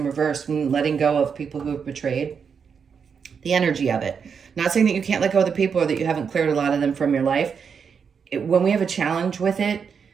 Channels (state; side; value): quieter; left; 6.4 dB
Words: reverse, letting go of people who have betrayed. The energy of it. Not saying that you can't let go of the people or that you haven't cleared a lot of them from your life. When we have a challenge with it,